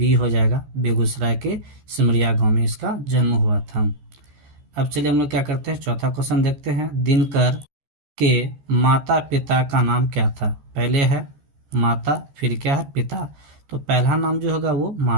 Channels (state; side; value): late; left; 14 ms